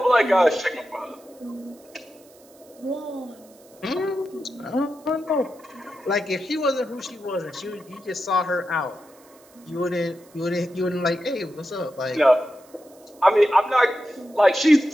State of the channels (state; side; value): noise; right; hiss, 27 dB below the sound